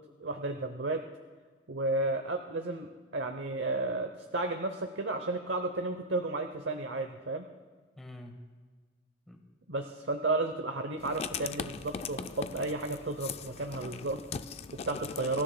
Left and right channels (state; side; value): normal; both; correlation -0.08